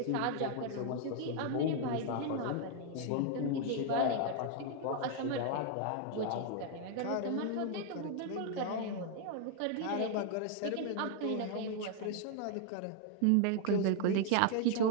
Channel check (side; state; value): both; different; correlation 0.00